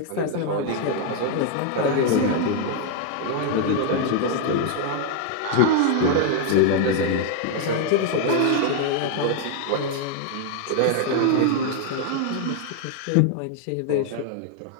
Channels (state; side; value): different; both; correlation 0.00